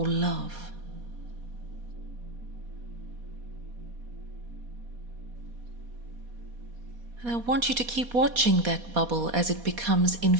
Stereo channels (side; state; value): left; late; 4.2 ms